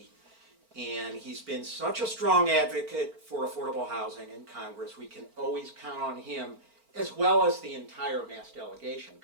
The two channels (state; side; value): late; left; 4.4 ms